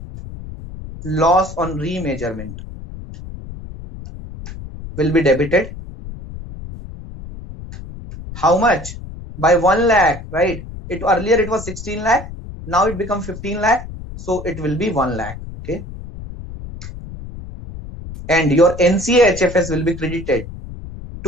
loss on remeasurement will be debited. How much? By 1 lakh, right? Earlier it was 16 lakh. Now it becomes 15 lakh. So it will be 1 lakh. Okay. And your NCA HFS will be credited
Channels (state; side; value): noise; left; rumble, 12 dB below the sound